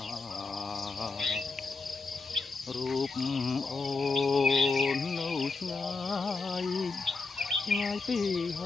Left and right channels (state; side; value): quieter; right; 4.1 dB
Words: រូបអូននៅឆ្ងាយឆ្ងាយពីហ